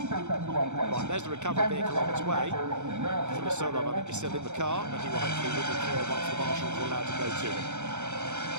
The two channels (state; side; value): late; left; 0.84 ms